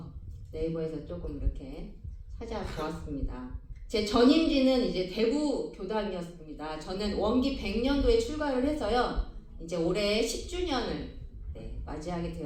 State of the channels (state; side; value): identical; both; correlation 1.00